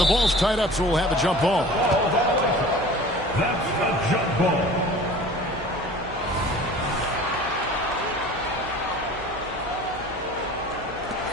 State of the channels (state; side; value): noise; right; hum, 15 dB below the sound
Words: ball's tied up, so we'll have a jump ball. That's the jump ball.